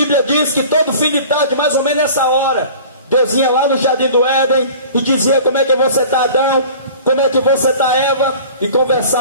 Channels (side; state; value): both; inverted; correlation -0.43